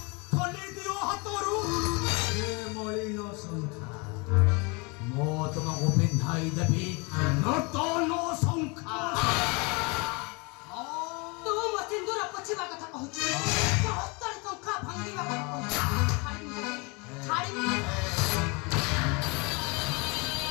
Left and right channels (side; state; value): right; quieter; 29.6 dB